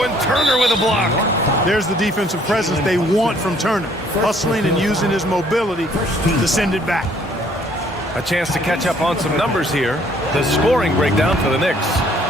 and Turner with a block. There's the defensive presence they want from Turner. Hustling and using his mobility to send it back. A chance to catch up on some numbers here. The scoring breakdown for the Knicks.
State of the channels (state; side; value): normal; both; correlation 0.62